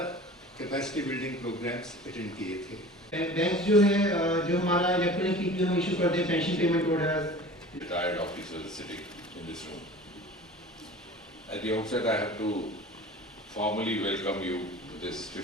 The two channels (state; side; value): normal; both; correlation 0.41